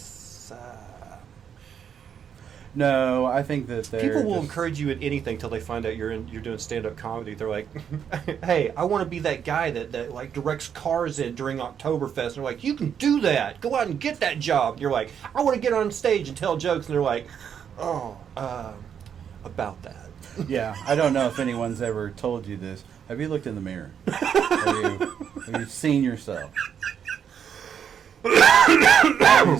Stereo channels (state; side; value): quieter; left; 8.1 dB